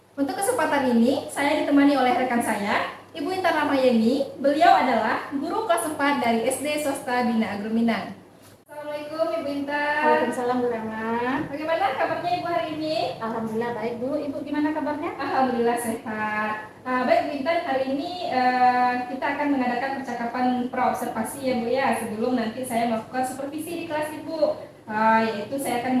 Untuk kesempatan ini, saya ditemani oleh rekan saya, Ibu Intan Ramayeni. Beliau adalah guru kelas 4 dari SD Swasta Bina Agro Minang. Assalamualaikum Ibu Intan. Waalaikumsalam Bu Rama. Bagaimana kabarnya Ibu hari ini? Alhamdulillah baik Bu. Ibu gimana kabarnya? Alhamdulillah sehat. Baik Bu Intan, hari ini kita akan mengadakan percakapan praobservasi ya Bu ya, sebelum nanti saya melakukan supervisi di kelas Ibu. Yaitu saya akan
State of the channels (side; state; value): both; identical; correlation 1.00